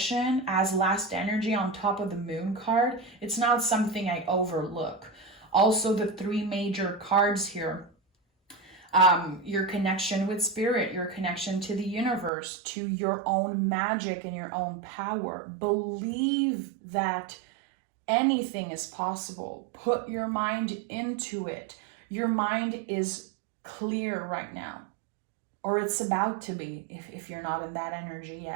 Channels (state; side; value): drops out; left; at 12.3 s